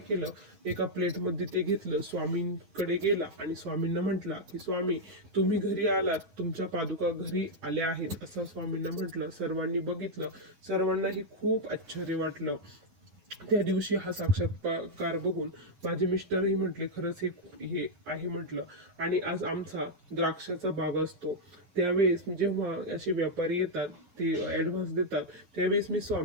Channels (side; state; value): left; late; 9.6 ms